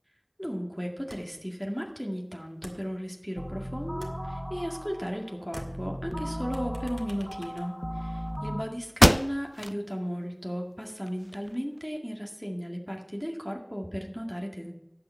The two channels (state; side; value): identical; both; correlation 1.00